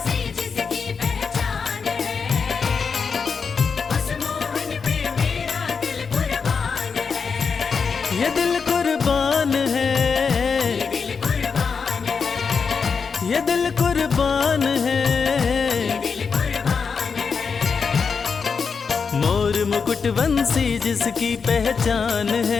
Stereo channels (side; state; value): right; quieter; 5.6 dB